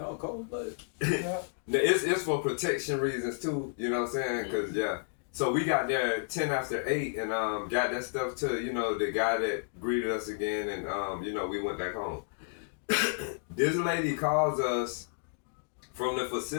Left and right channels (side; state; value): right; silent; digital silence